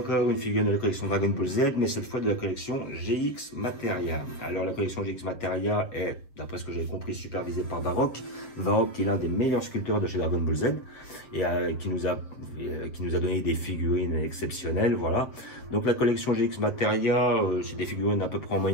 une figurine de la collection Dragon Ball Z, mais cette fois de la collection GX Materia. Alors la collection GX Materia est, d'après ce que j'ai compris, supervisée par Varrock. Varrock qui est l'un des meilleurs sculpteurs de chez Dragon Ball Z et qui nous a donné des figurines exceptionnelles, voilà. Donc la collection GX Materia, c'est des figurines à peu près en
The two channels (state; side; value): late; right; 7.4 ms